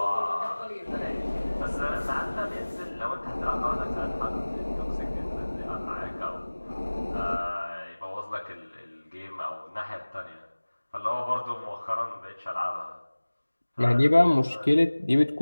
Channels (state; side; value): inverted; both; correlation -1.00